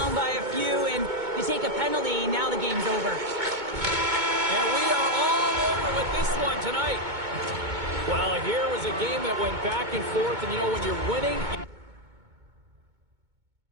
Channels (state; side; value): late; left; 2.2 ms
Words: by a few, and you take a penalty, now the game's over. And we are all over with this one tonight. Well, here was a game that went back and forth, and you know, when you're winning...